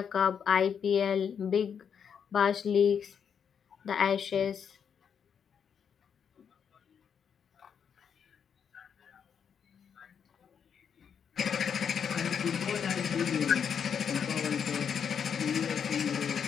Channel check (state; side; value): quieter; right; 7.4 dB